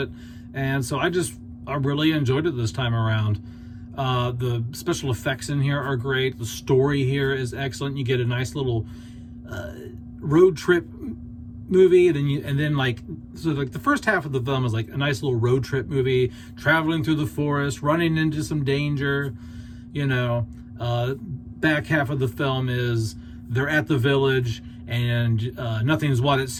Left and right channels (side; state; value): both; identical; correlation 1.00